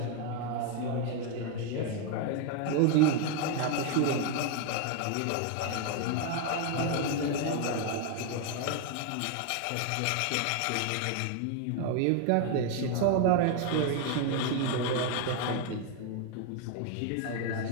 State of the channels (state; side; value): different; both; correlation 0.01